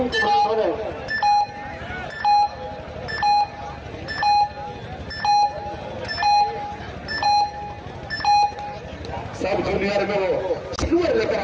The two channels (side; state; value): both; identical; correlation 1.00